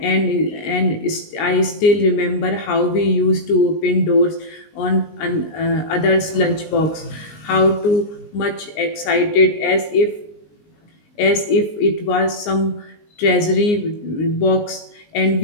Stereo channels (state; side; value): late; right; 19 ms